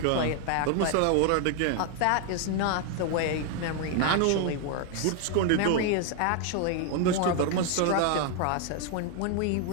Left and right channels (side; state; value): both; different; correlation 0.00